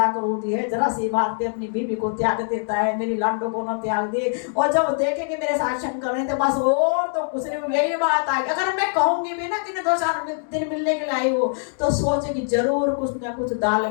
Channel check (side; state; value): right; silent; digital silence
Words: क्रोधी है, जरा सी बात पे अपनी बीवी को त्याग देता है, मेरी लाडो को न त्याग दे। और जब देखेंगे मेरे साथ शंकर नहीं तो बस और तो कुछ नहीं, यही बात आएगी। अगर मैं कहूंगी भी ना कि 2-4 दिन मिलने के लिए आई हो, तो सोचे कि जरूर कुछ ना कुछ दाल